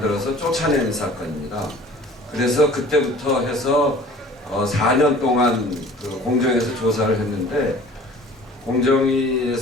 쫓아내는 사건입니다. 그래서 그때부터 해서 4년 동안 공정에서 조사를 했는데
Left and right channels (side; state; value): both; normal; correlation 0.47